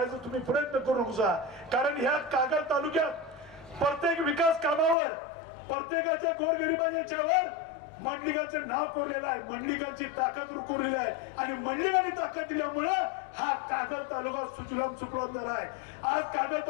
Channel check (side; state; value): right; drops out; at 5.0 s